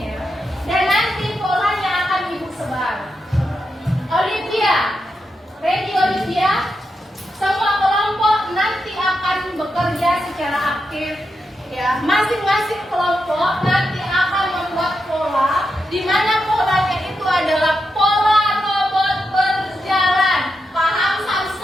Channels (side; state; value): both; normal; correlation 0.86